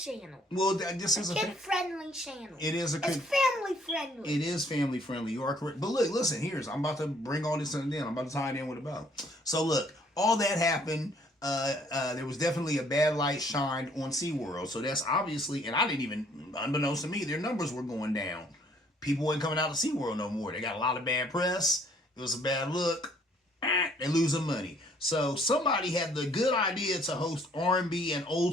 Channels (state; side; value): normal; both; correlation 0.62